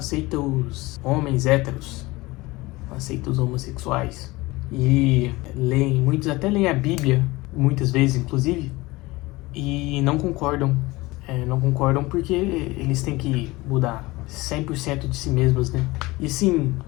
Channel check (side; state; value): right; quieter; 21.2 dB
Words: os homens héteros, não aceita os homossexuais. E muitos até leem a Bíblia, muitas vezes inclusive, e não concordam. Não concordam porque eles têm que mudar 100% de si mesmos, né? E sim,